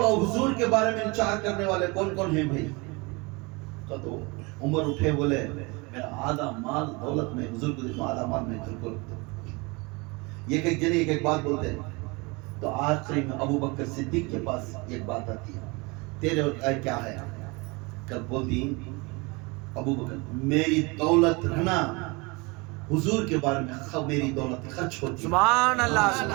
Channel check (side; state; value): left; quieter; 26.9 dB